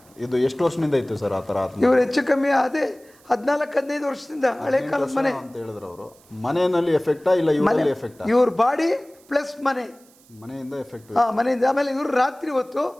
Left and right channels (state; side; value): noise; right; hiss, 29 dB below the sound